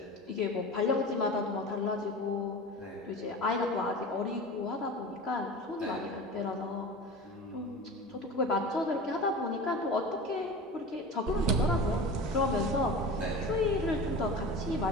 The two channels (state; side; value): normal; both; correlation 0.33